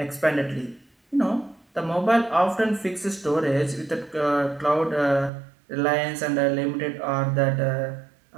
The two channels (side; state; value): left; drops out; at 5.3 s